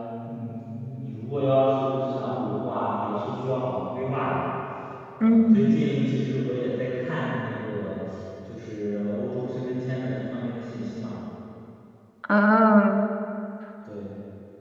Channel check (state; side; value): identical; both; correlation 1.00